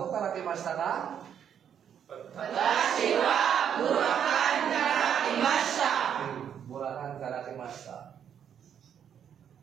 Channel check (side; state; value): left; quieter; 8.6 dB